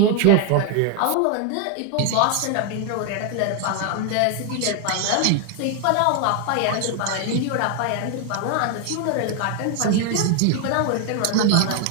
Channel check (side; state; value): both; different; correlation 0.00